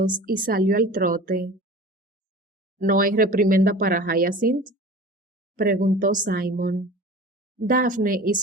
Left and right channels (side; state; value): both; normal; correlation 0.39